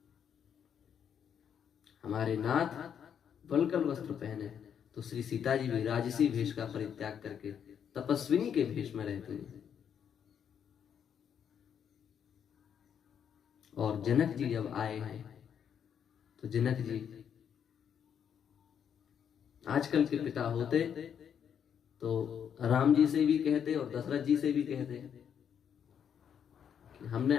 हमारे नाथ वल्कल वस्त्र पहने तो श्री सीता जी भी राजसी भेष का परित्याग करके तपस्विनी के भेष में रहती हैं। और जनक जी जब आए हैं तो जनक जी आजकल के पिता होते तो राम जी से भी कहते और दशरथ जी से भी कहते कि आपने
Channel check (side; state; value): right; quieter; 8.2 dB